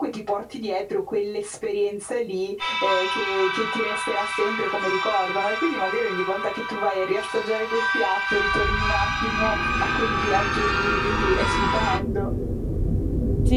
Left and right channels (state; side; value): identical; both; correlation 1.00